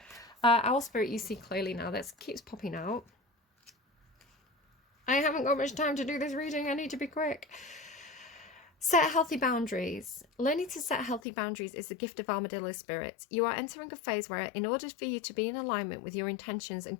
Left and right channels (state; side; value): drops out; right; at 11.2 s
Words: Owl Spirit, you see clearly now. That keeps popping out. I haven't got much time to do this reading. I need to be quick. Set healthy boundaries. Learning to set healthy boundaries is the gift of armadillo spirit. You are entering a phase where, in order for you to be in alignment with your intentions and